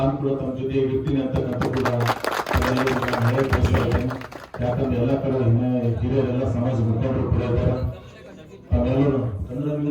ಕೂಡ ತಮ್ಮ ಜೊತೆ ಇರ್ತೀನಿ ಅಂತಕ್ಕಂಥ ಕೂಡ ಯಾಕಂದ್ರೆ ಎಲ್ಲ ಕಡೆ ಹಿರಿಯರೆಲ್ಲ ಸಮಾಜ ಮುಖಂಡರು ಕೂಡ ಇದ್ದಾರೆ. ತಾವೆಲ್ಲರೂ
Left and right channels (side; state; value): both; identical; correlation 1.00